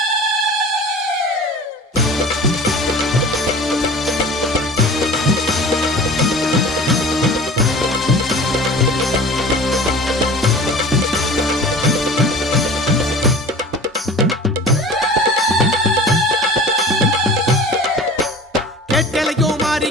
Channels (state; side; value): normal; both; correlation 0.40